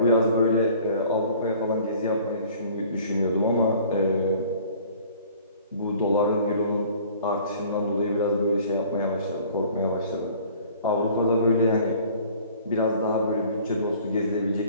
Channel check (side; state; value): both; inverted; correlation -0.51